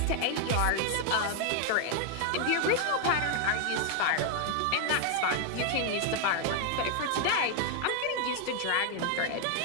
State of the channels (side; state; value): both; different; correlation 0.00